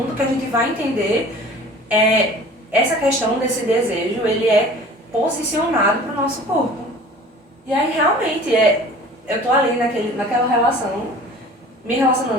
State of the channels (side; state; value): both; normal; correlation 0.44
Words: que a gente vai entender essa questão desse desejo, ele é posicionado para o nosso corpo. E aí realmente eu tô ali naquela relação, me